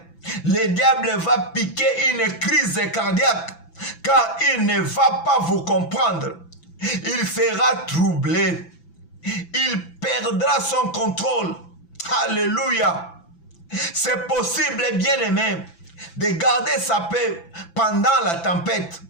Le diable va piquer une crise cardiaque car il ne va pas vous comprendre. Il sera troublé. Il perdra son contrôle. Alléluia. C'est possible, bien-aimé, de garder sa paix pendant la tempête.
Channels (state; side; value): late; right; 6.0 ms